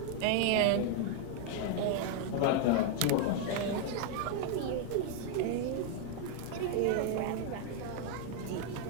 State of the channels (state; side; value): different; both; correlation 0.00